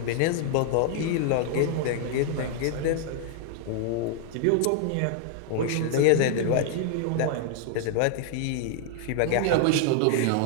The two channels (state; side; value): different; both; correlation -0.01